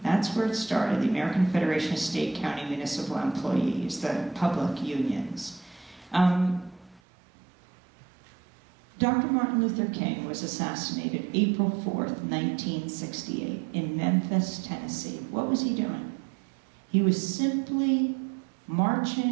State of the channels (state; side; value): drops out; left; at 7.0 s